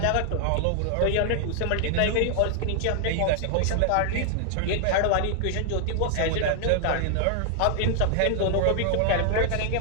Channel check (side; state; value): both; different; correlation 0.00